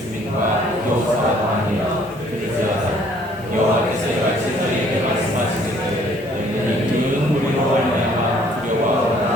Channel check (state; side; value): noise; right; hiss, 27 dB below the sound